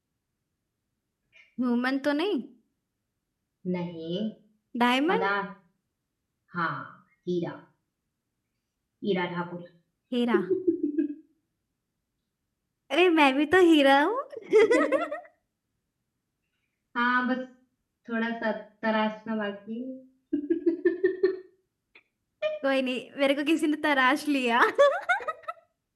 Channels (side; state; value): both; identical; correlation 1.00